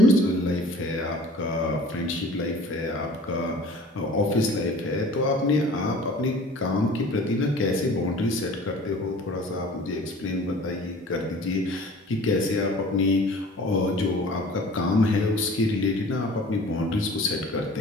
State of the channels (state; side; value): normal; both; correlation 0.45